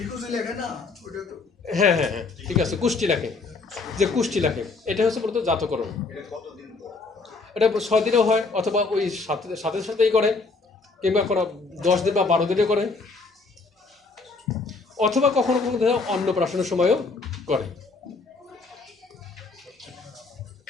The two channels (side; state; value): right; quieter; 4.0 dB